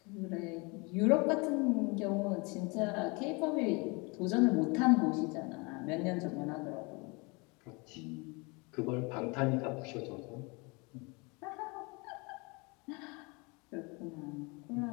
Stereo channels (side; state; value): right; quieter; 28.9 dB